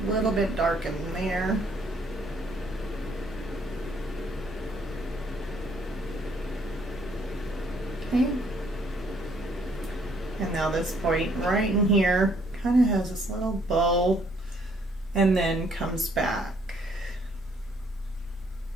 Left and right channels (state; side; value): normal; both; correlation 0.65